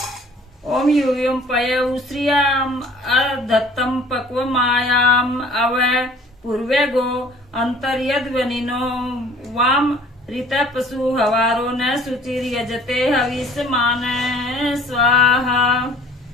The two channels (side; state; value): both; normal; correlation 0.51